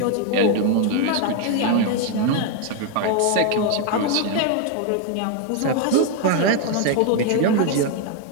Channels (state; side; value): different; both; correlation 0.01